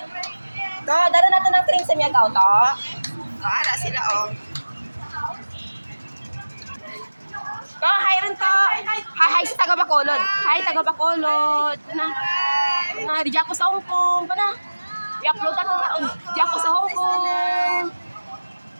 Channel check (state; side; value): inverted; both; correlation -1.00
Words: Dara natin ng train sa Miagaw to. Ala sila, oh. Hi rin to. Hi sa taga Bacolod. Hi, taga Bacolod. Di ako sa Hong Kong. I-upload natin taon. Di ako sa Hong Kong.